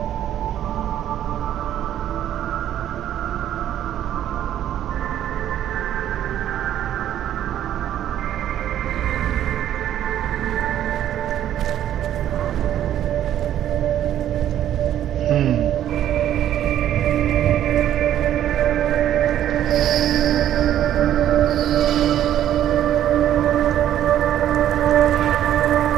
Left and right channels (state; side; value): quieter; left; 11.3 dB